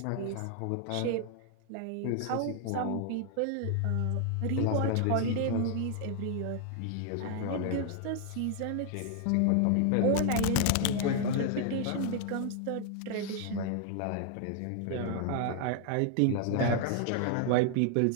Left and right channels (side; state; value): both; different; correlation 0.00